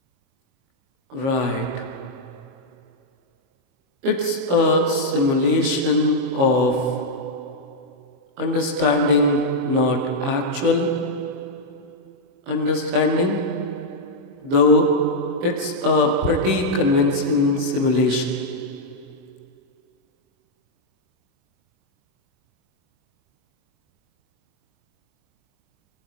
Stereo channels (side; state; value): left; late; 22 ms